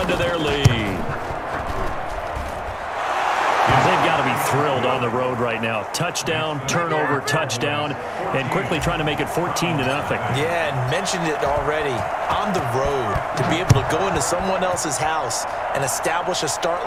to their lead. They've got to be thrilled on the road right now. Touchdown, turnover, touchdown, and quickly trying to make it 14-0. Yeah, and mentioned it already. On the road, to be able to go into someone else's house and establish a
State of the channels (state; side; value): identical; both; correlation 1.00